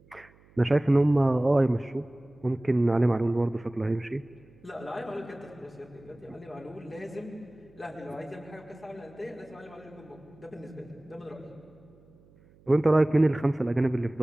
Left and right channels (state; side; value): noise; right; hum, 28 dB below the sound